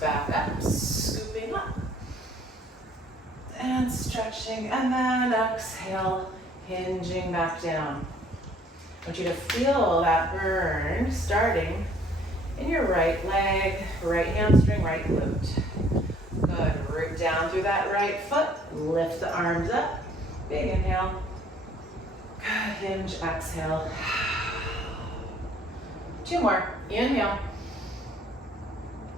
up, scooping up. And stretching, and then exhale, hinging back down. I want you to feel that burn starting in your right leg, right hamstring, right glute. Good, root down through that right foot, lift the arms up, big inhale. Good, hinge, exhale. 2 more, inhale.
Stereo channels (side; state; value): both; normal; correlation 0.59